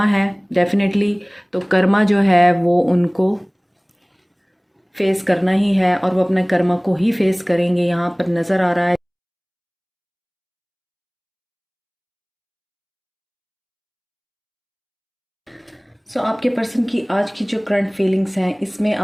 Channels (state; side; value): identical; both; correlation 1.00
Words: है डेफिनेटली। तो कर्मा जो है वो उनको फेस करना ही है और वो अपने कर्मा को ही फेस करेंगे, यहाँ पर नज़र आ रहा है। आपके पर्सन की आज की जो करंट फीलिंग्स हैं, इसमें